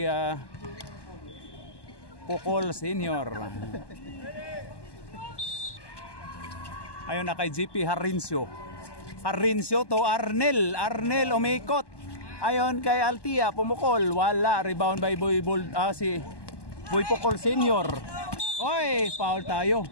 Pocol Senior. Ayon na kay GP Harincio. Harincio to Arnel. Arnel umikot. Ayon kay Altia, pumukol, wala. Rebound by si Boy Pocol Senior. Oy, foul tayo.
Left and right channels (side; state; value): right; late; 1.1 ms